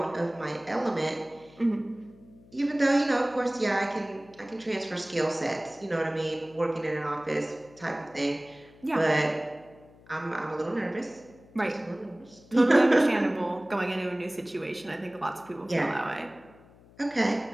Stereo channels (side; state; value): left; noise; hum, 25 dB below the sound